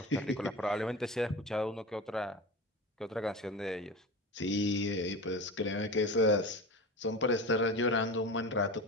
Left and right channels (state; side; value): normal; both; correlation 0.30